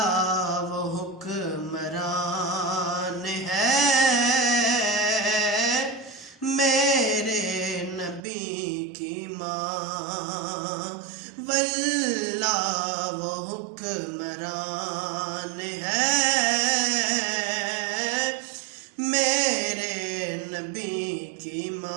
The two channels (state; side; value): drops out; left; at 8.2 s